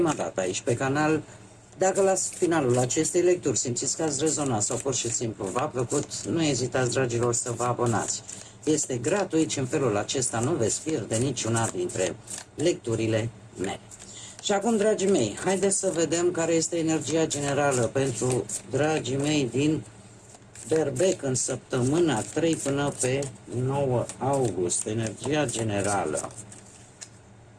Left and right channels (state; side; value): identical; both; correlation 1.00